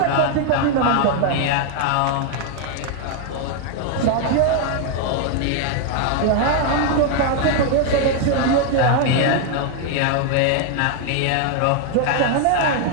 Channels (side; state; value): both; different; correlation 0.00